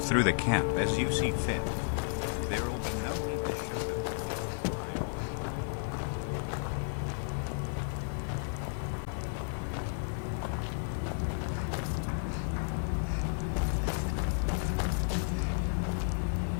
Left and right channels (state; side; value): silent; right; digital silence